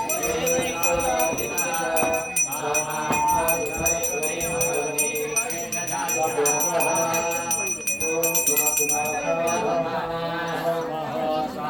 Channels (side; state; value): both; identical; correlation 1.00